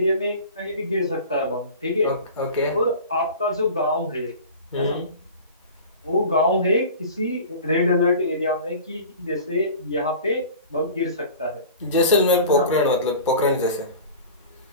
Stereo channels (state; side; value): inverted; both; correlation -0.38